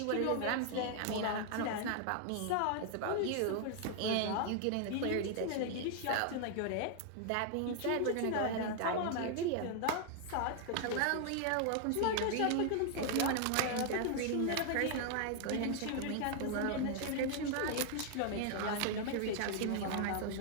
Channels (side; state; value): both; different; correlation 0.00